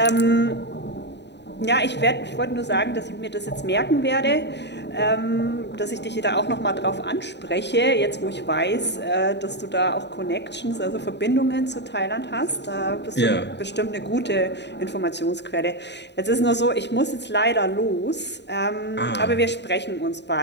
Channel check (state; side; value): late; right; 0.50 ms